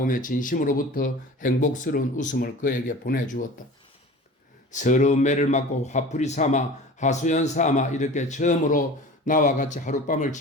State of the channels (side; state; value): both; normal; correlation 0.38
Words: 진심으로부터 행복스러운 웃음을 그에게 보내주었다. 서러운 매를 맞고 화풀이 삼아 하소연 삼아 이렇게 처음으로 나와 같이 하룻밤을